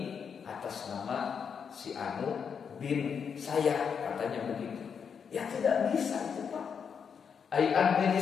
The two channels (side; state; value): right; quieter; 6.7 dB